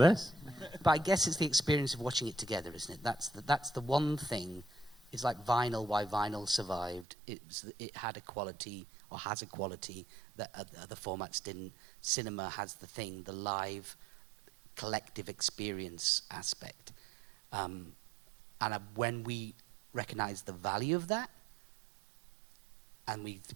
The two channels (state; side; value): drops out; left; at 7.1 s